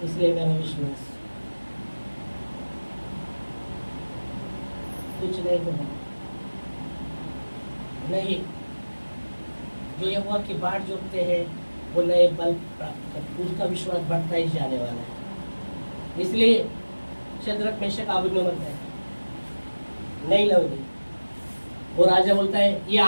इसलिए मेरा विश्वास, कुछ नहीं हो रहा नहीं। जो यहोवा की बाट जोतते हैं वो नए बल प्राप्त करते, उसका विश्वास बढ़ता ही जाने वाला है। इसलिए शद्रक, मेशक, अबेदनगो मरता है, नहीं लोगे। वो राजा बोलता है ये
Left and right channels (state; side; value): inverted; both; correlation -1.00